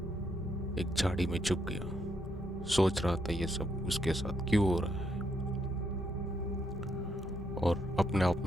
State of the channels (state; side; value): normal; both; correlation 0.76